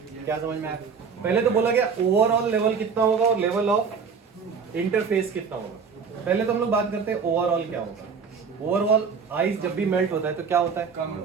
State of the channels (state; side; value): quieter; left; 5.9 dB